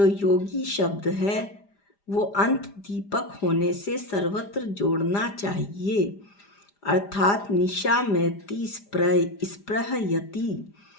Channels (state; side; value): late; right; 5.0 ms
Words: योगी शब्द है वो अंत दीपक होने से सर्वत्र जोड़ना चाहिए, अर्थात निशामयति स्पृहयति।